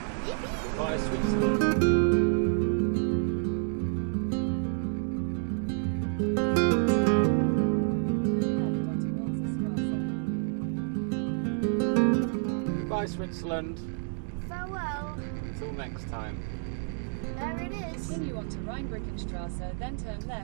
Yippee! Goodbye, Switzerland. Goodbye, Switzerland. Farewell. Until next time. There it is. Continue on to Rheinbrückenstraße, then turn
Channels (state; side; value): silent; left; 58 dB below the other